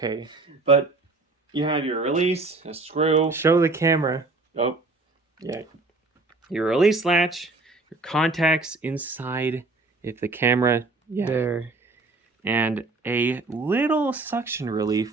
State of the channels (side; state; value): left; quieter; 3.4 dB